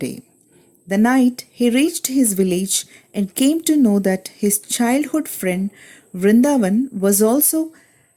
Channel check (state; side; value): identical; both; correlation 1.00